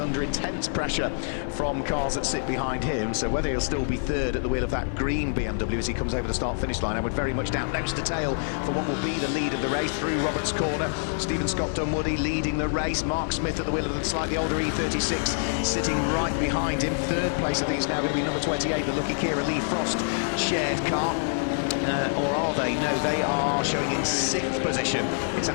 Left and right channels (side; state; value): right; silent; 61 dB below the other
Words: intense pressure from cars that sit behind him. So whether he'll still be third at the wheel of that green BMW as he comes over the start-finish line, I would very much doubt. Nose to tail for what will be the lead of the race through Roberts' corner. Stephen Scott Dunwoody leading the race. Mark Smith at the wheel of the slightly older E36 sitting right behind him. Third place, I think, is now going to be number 28, the Lucky Kira Lee Frost shared car. Or are they? No, they are showing in 6th position. It's